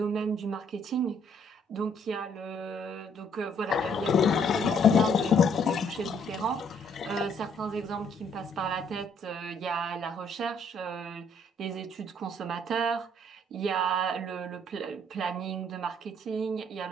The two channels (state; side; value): normal; both; correlation 0.66